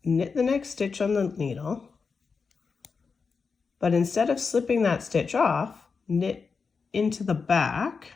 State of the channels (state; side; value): quieter; right; 5.1 dB